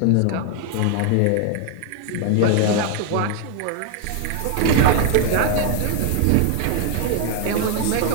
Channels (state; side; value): different; both; correlation 0.00